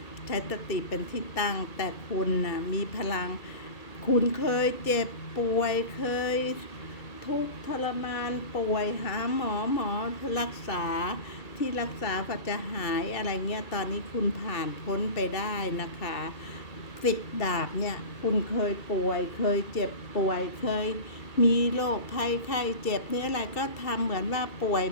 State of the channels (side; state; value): right; late; 2.3 ms